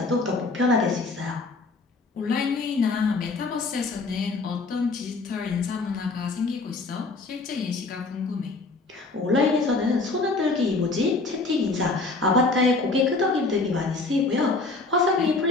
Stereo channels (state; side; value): quieter; right; 3.6 dB